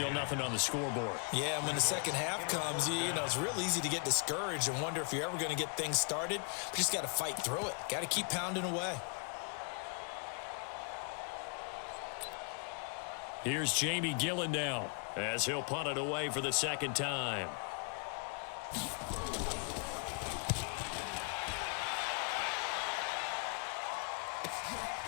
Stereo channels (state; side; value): quieter; right; 39.7 dB